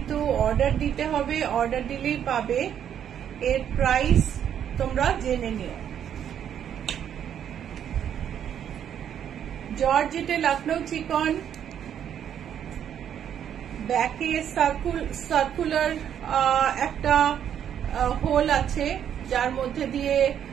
অর্ডার দিতে হবে, অর্ডার দিলেই পাবে। এর প্রাইস তোমরা জেনে নিও। জর্জেটে লখনৌ চিকন, ব্যাকে সার্কুলার একটা হোল আছে যার মধ্যে দিয়ে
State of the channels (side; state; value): left; quieter; 9.3 dB